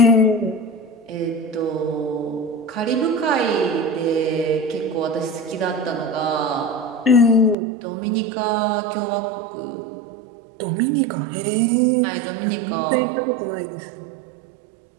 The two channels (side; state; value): left; drops out; at 7.6 s